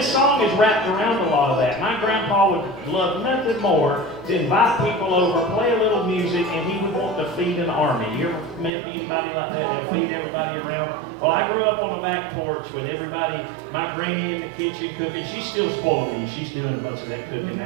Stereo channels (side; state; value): left; drops out; at 8.7 s